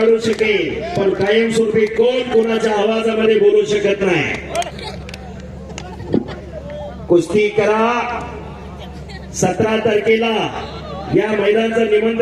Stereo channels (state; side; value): identical; both; correlation 1.00